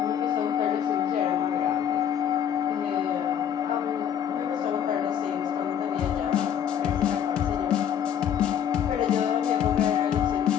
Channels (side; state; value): right; quieter; 9.1 dB